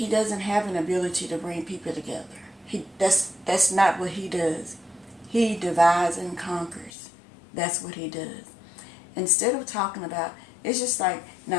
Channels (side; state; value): right; drops out; at 6.9 s